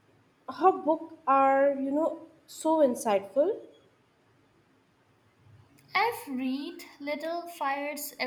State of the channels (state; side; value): identical; both; correlation 1.00